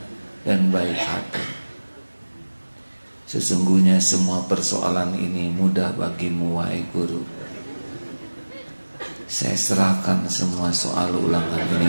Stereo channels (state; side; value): inverted; both; correlation -1.00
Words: dan baik hati, sesungguhnya semua persoalan ini mudah bagimu wahai guru. Saya serahkan semua soal ulangan